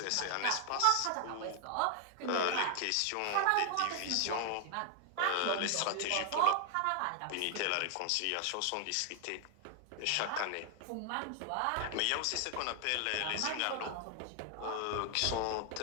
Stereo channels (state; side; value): different; both; correlation 0.00